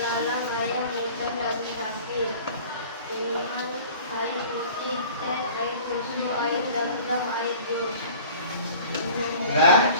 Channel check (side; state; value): both; inverted; correlation -0.45